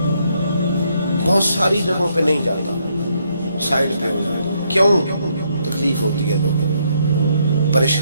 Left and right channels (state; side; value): inverted; both; correlation -0.73